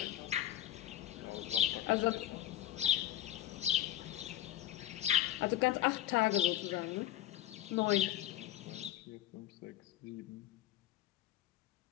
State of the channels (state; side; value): quieter; right; 12.9 dB